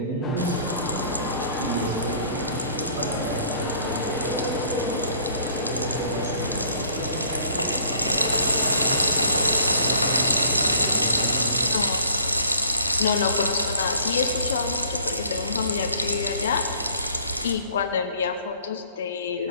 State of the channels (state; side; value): inverted; both; correlation -0.56